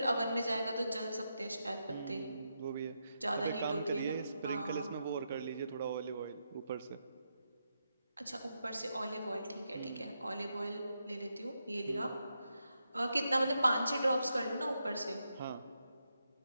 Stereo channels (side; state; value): both; inverted; correlation -0.84